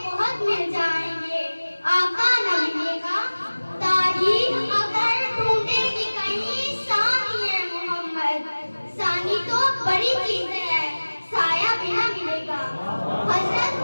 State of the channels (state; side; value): inverted; both; correlation -1.00